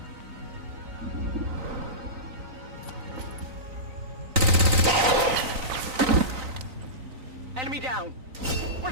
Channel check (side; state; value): left; late; 3.9 ms